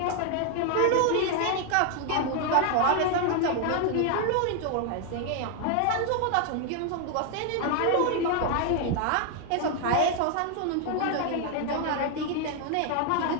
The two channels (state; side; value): different; both; correlation 0.00